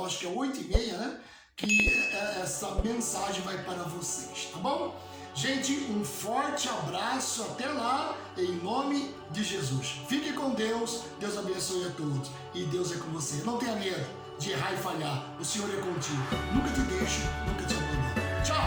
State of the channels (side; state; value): both; identical; correlation 1.00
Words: acho que é 8h30, né? Que essa mensagem vai para vocês, tá bom? Gente, um forte abraço, até lá, em nome de Jesus. Fique com Deus, Deus abençoe a todos, e Deus é com você. Não tenha medo de errar e falhar, o Senhor é contigo. Nunca te deixo, nunca te abandono.